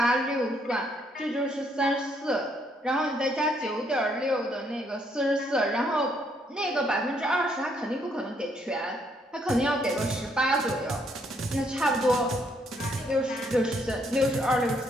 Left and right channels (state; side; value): normal; both; correlation 0.71